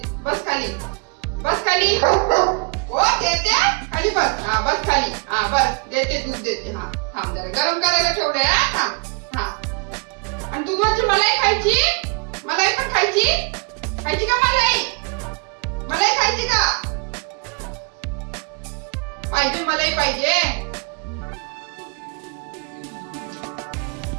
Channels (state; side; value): quieter; left; 34.6 dB